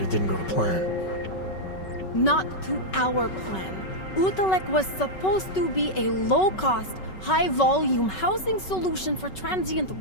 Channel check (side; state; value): right; late; 5.3 ms